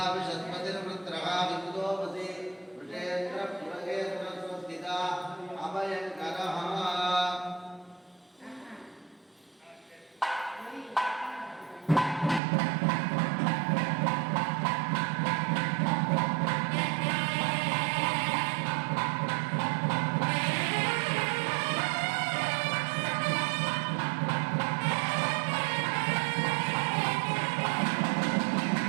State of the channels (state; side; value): drops out; left; at 12.4 s